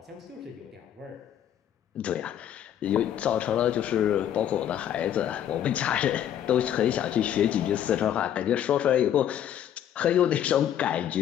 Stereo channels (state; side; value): quieter; right; 10.3 dB